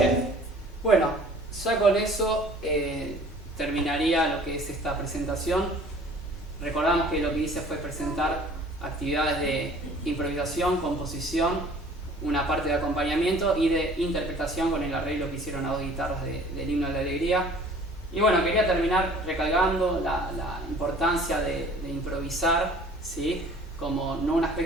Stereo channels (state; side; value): normal; both; correlation 0.50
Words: bueno, ya con eso terminaría lo que es esta presentación. Recordamos que lo que hice fue presentar actividades de improvisación, composición, una parte de acompañamiento y de interpretación con el arreglo que hicieron a 2 guitarras del Himno de la Alegría. Y bueno, quería terminar recalcando la importancia de improvisar, ¿sí? Como no un